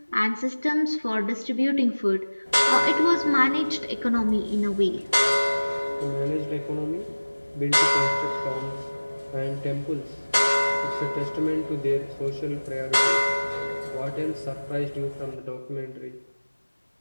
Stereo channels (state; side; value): inverted; both; correlation -1.00